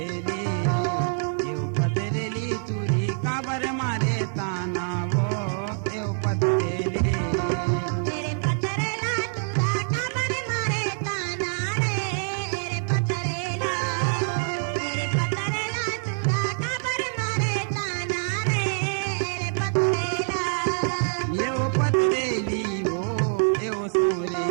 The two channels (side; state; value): left; silent; 58 dB below the other